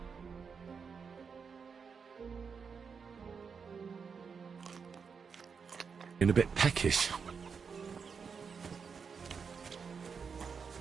In a bit peckish.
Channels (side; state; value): left; quieter; 5.9 dB